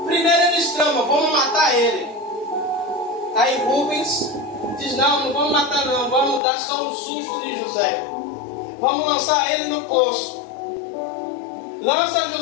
Primeiro eles tramam, vamos matar ele. Aí Rubens diz, não vamos matar não, vamos dar só um susto em José. Vamos lançar ele no poço. Lança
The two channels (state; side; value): drops out; right; at 6.4 s